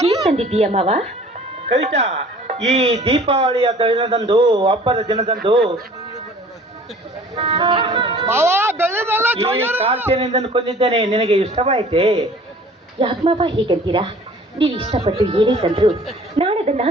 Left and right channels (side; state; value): both; normal; correlation 0.49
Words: ಏನ್ ತಂದಿದ್ದೀಯ ಮಾವ? ಕವಿತಾ, ಈ ದೀಪಾವಳಿಯ ದಿನದಂದು, ಹಬ್ಬದ ದಿನದಂದು ಈ ಕಾಲ್ಚೆನಿಂದ ಕೊಂದಿದ್ದೇನೆ. ನಿನಗೆ ಇಷ್ಟವಾಯಿತೆ? ಯಾಕೆ ಮಾವ ಹೀಗಂತೀರಾ? ನೀವು ಇಷ್ಟಪಟ್ಟು ಏನೇ ತಂದ್ರು ನಾನದನ್ನ